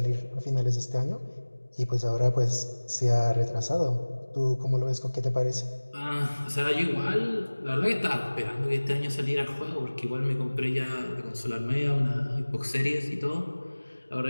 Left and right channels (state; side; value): inverted; both; correlation -1.00